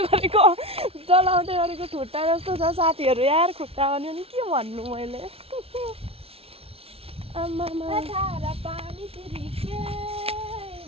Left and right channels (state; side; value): late; left; 0.28 ms